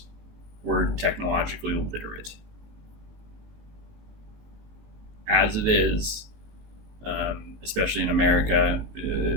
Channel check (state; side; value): late; left; 19 ms